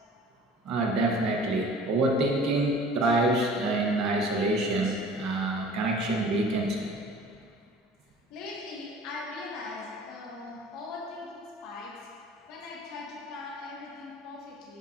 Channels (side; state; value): both; normal; correlation 0.46